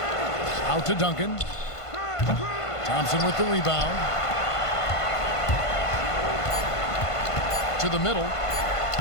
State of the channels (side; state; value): right; late; 1.5 ms